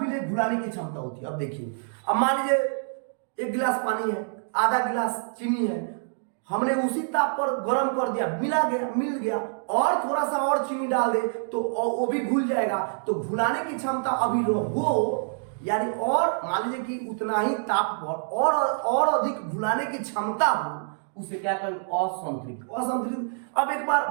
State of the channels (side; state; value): left; silent; digital silence